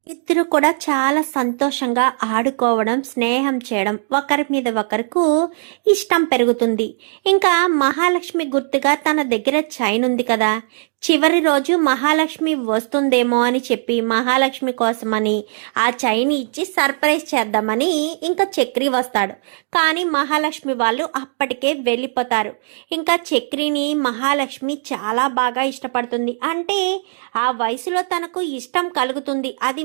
ఇద్దరు కూడా చాలా సంతోషంగా ఆడుకోవడం, స్నేహం చేయడం, ఒకరి మీద ఒకరికి ఇష్టం పెరుగుతుంది. ఇంకా మహాలక్ష్మి గుర్తుగా తన దగ్గర చైన్ ఉంది కదా, చివరి రోజు మహాలక్ష్మి వస్తుందేమో అని చెప్పి మహాలక్ష్మి కోసమని ఆ చైన్ ఇచ్చి సర్ప్రైజ్ చేద్దామని ఇంకా చక్రి వస్తాడు. కానీ మహాలక్ష్మి వాళ్ళు అప్పటికే వెళ్ళిపోతారు. ఇంకా చక్రిని మహాలక్ష్మి చాలా బాగా ఇష్టపడుతుంది. అంటే ఆ వయసులో తనకు ఇష్టం కలుగుతుంది, అది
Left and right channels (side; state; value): left; silent; 64 dB below the other